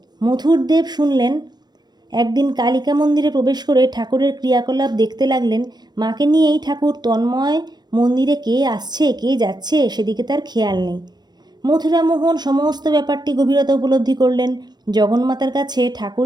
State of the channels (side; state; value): left; late; 0.20 ms